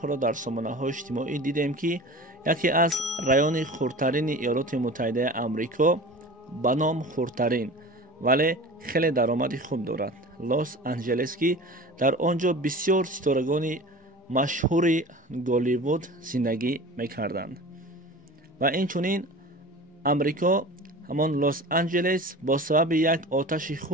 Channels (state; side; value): normal; both; correlation 0.37